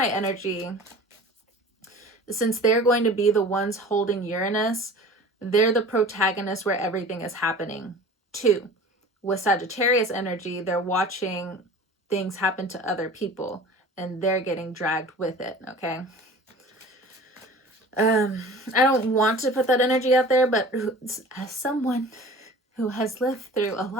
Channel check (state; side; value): normal; both; correlation 0.41